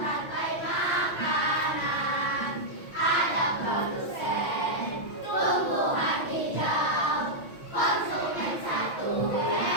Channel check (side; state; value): right; late; 5.9 ms